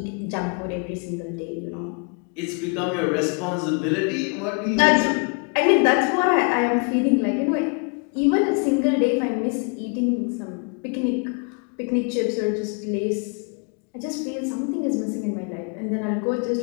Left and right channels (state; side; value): quieter; right; 37.3 dB